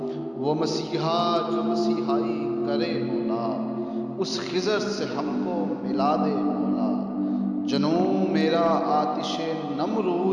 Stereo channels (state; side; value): identical; both; correlation 1.00